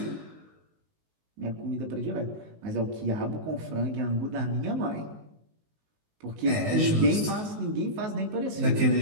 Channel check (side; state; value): left; late; 19 ms